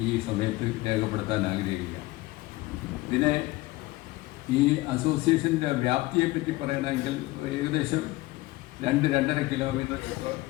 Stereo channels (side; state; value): right; quieter; 19.8 dB